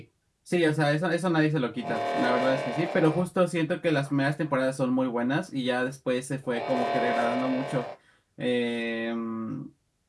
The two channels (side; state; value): both; identical; correlation 1.00